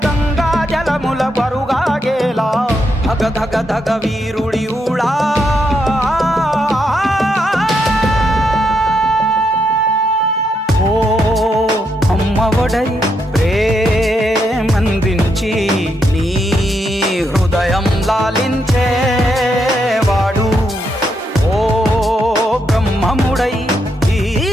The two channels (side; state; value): both; normal; correlation 0.80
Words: గంగా జలముల బరుగాగేలా, ధగ ధగ ధగ వీరుడి ఊళా. ఓ అమ్మఒడై ప్రేమందించి నీ